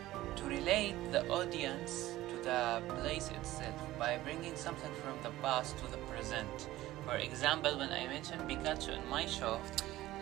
to relate the audience the place itself by bringing something from the past to the present. For example, when I mentioned Pikachu in my show,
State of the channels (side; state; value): left; quieter; 16.1 dB